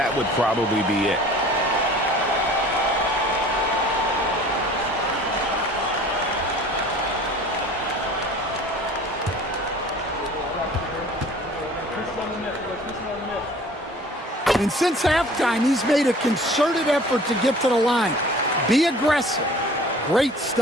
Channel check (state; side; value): normal; both; correlation 0.47